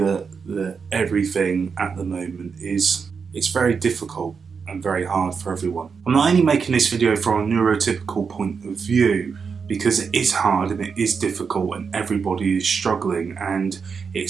everything at the moment it's very difficult and very hard for everyone. I'm not only making this video from a neurotypical point of view because it is hard and it is difficult and everybody is struggling, and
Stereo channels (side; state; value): left; quieter; 5.7 dB